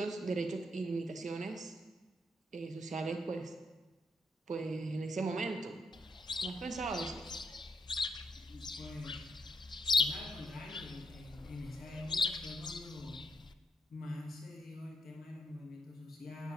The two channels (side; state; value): both; normal; correlation 0.78